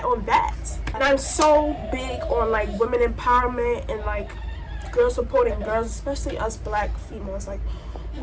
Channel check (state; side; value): identical; both; correlation 1.00